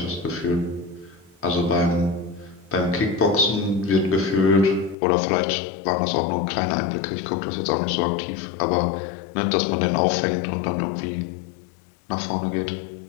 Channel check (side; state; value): right; drops out; at 5.0 s